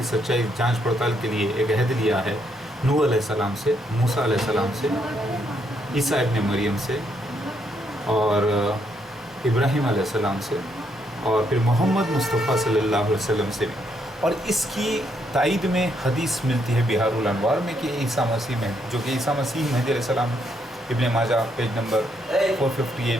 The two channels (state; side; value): normal; both; correlation 0.75